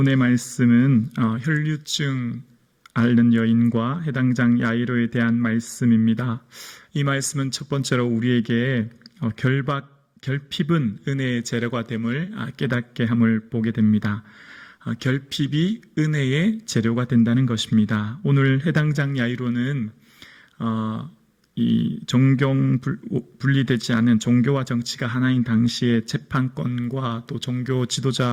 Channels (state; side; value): identical; both; correlation 1.00